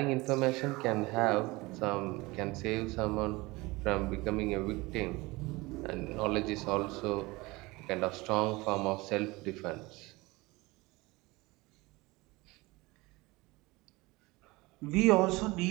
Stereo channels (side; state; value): left; quieter; 22.5 dB